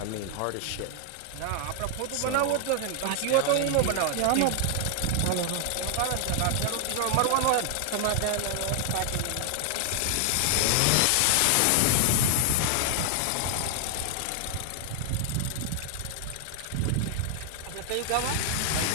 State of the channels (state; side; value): different; both; correlation 0.00